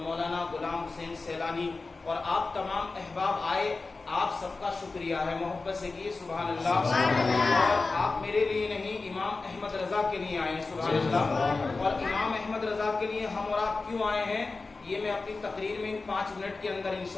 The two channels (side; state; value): right; quieter; 3.8 dB